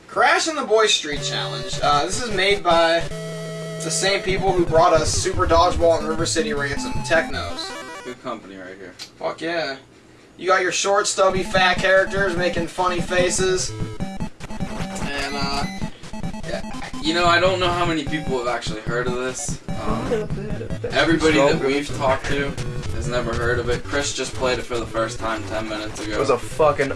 Crash and the Boys Street Challenge. This is made by the same people who brought us Super Dodgeball and River City Ransom. Technos. Good company right here. Fuck yeah. You got your short, stubby, fat characters making funny faces. And, you know, I don't know how many people have actually heard of this. Everybody that we've talked to has never heard of it. Chris just played it for the first time 10 minutes ago. It was a fucking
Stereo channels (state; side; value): identical; both; correlation 1.00